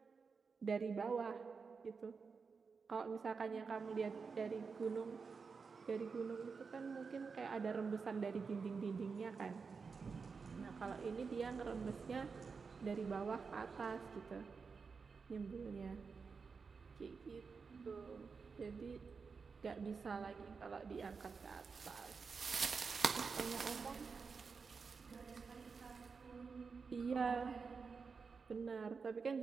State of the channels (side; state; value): left; quieter; 5.1 dB